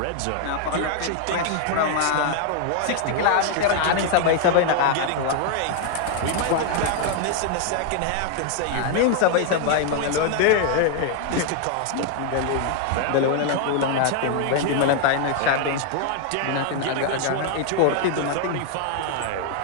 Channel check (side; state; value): both; different; correlation 0.00